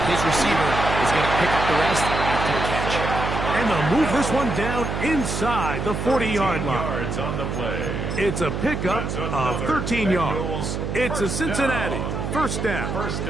his receiver is going to pick up the rest after the catch. And they'll move this one down inside the 40-yard line. Yards on the play. It's a pickup of 13 yards. It's a Cincinnati 1st down. 1st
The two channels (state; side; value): noise; right; hum, 3 dB below the sound